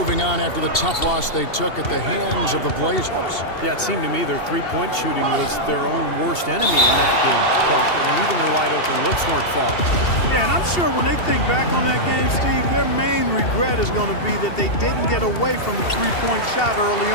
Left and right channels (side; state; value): right; late; 2.7 ms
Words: on after the tough loss they took at the hands of the Blazers. Yeah, it seemed to me their three-point shooting was their own worst enemy in that game. And even their wide-open looks weren't falling. Yeah, and I'm sure when they think back on that game, Steve, their main regret is going to be that they didn't get away from the three-point shot early